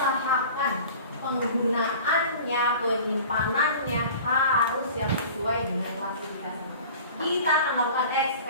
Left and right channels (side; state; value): both; inverted; correlation -0.41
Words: penggunaannya, penyimpanannya harus yang sesuai dengan klasifikasi. Kita akan melakukan